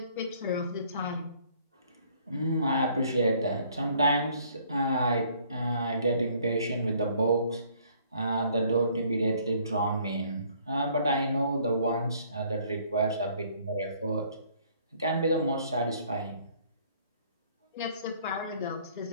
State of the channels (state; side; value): inverted; both; correlation -0.60